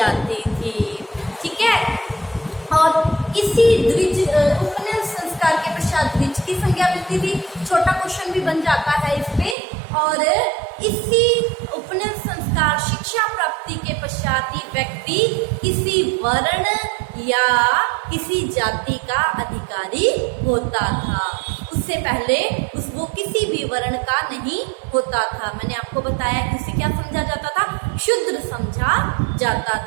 थी। ठीक है, और इसी द्विज उपनयन संस्कार के पश्चात द्विज की संज्ञा मिलती थी। छोटा क्वेश्चन भी बन जाता है इस पे। और इसी उपनयन संस्कार शिक्षा प्राप्ति के पश्चात ही व्यक्ति किसी वर्ण या किसी जाति का अधिकारी होता था। उससे पहले वो किसी भी वर्ण का नहीं होता था। मैंने आपको बताया कि उसे क्या समझा जाता था, शूद्र समझा जाता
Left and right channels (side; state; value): left; drops out; at 9.6 s